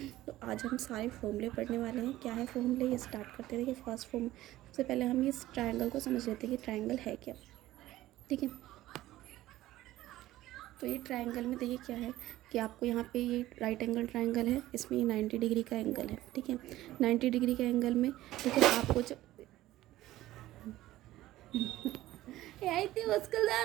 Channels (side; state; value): left; quieter; 15.6 dB